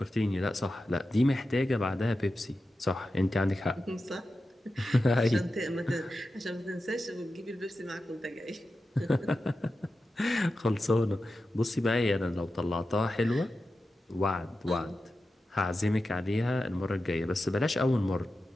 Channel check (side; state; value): both; normal; correlation 0.92